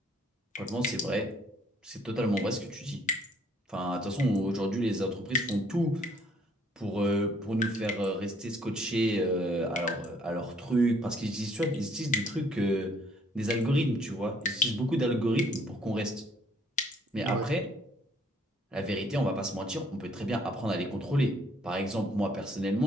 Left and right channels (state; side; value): normal; both; correlation 0.63